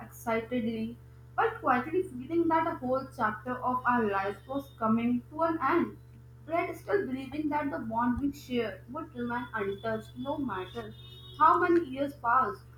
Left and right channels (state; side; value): identical; both; correlation 1.00